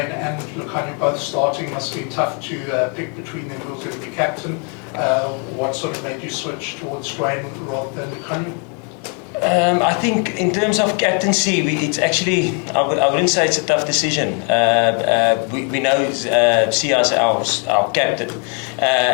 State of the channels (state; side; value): quieter; right; 37.7 dB